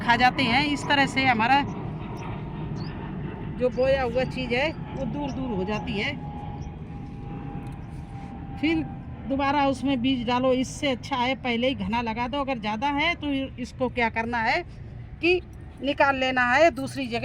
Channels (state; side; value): identical; both; correlation 1.00